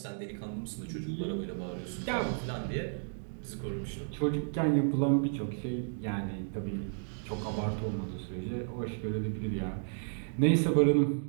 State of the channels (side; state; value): left; silent; digital silence